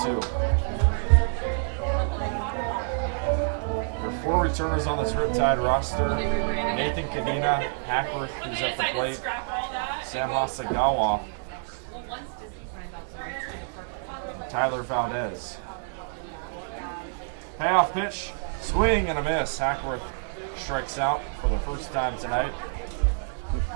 There are 4 returners on this Riptide roster. Nathan Kadena, Hackworth, who's at the plate, Sam Hasagawa, and Tyler Valdez. Payoff pitch, swing and a miss. Hackworth strikes out for the first time tonight.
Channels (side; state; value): left; silent; digital silence